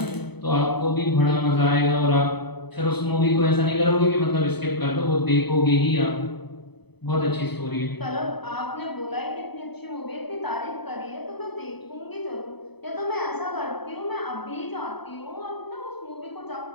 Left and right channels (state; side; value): late; right; 0.98 ms